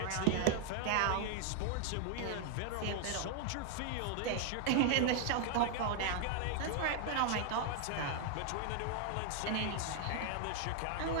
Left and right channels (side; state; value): both; different; correlation 0.00